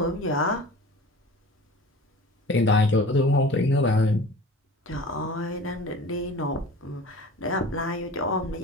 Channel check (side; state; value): both; normal; correlation 0.40